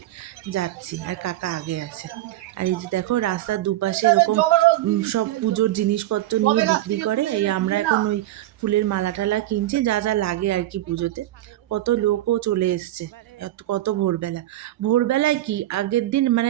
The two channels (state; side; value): quieter; left; 14.8 dB